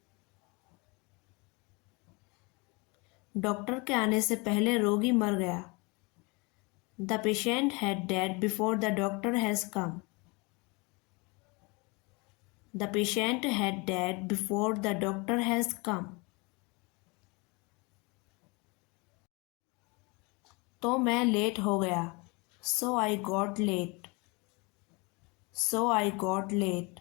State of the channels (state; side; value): quieter; right; 28.2 dB